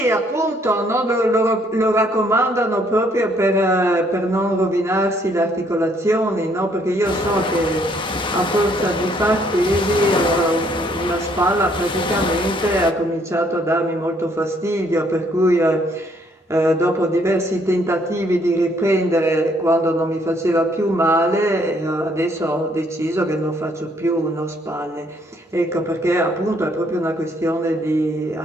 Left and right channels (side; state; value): both; normal; correlation 0.67